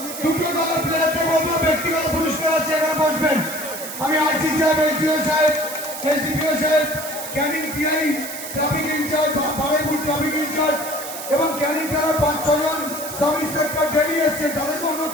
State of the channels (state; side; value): noise; right; hiss, 9 dB below the sound